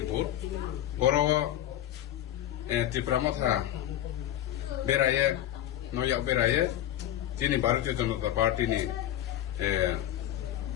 বুথ বড় ত্রিপুরা মথা বেরায়ে নয়া বেরায়ে তিনি ভারতীয় জনতা পার্টি নি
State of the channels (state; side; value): quieter; right; 12.3 dB